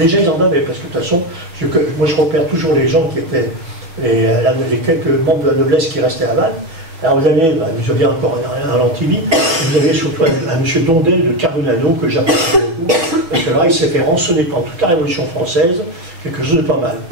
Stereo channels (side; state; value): left; late; 6.1 ms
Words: ils en avaient, parce que de toute façon, moi je repère toujours les gens qui étaient, les quelques membres de la noblesse qui restaient à Vannes. Alors vous avez, vous aviez encore un Lantivy, vous avez surtout un monsieur Dondel de Carbonano, que j'apprécie beaucoup, parce que là il s'est fait rançonner pendant toute la Révolution française, quelque chose de pas mal.